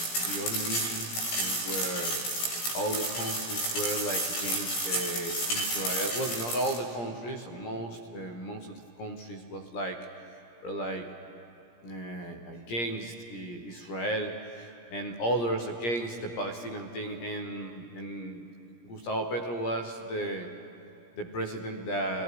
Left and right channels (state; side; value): late; right; 17 ms